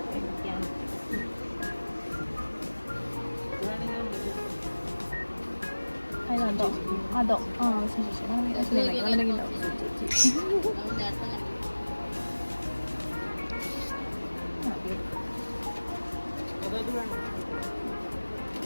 അതോ ആ ശരി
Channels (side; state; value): both; inverted; correlation -1.00